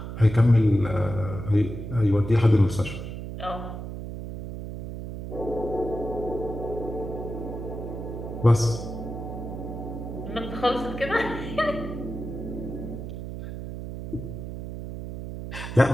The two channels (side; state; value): right; noise; hum, 8 dB below the sound